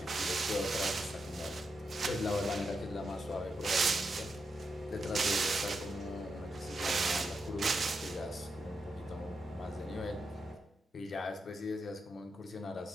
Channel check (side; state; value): both; normal; correlation 0.84